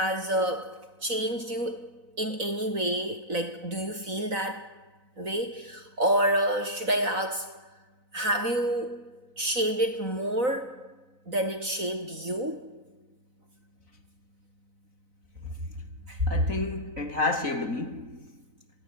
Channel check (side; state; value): left; late; 4.0 ms